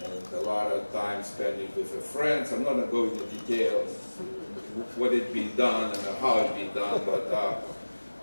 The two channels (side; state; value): both; inverted; correlation -1.00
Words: and a lot of time spending with the friends. I'm not going to go into details what it be done and how it be done,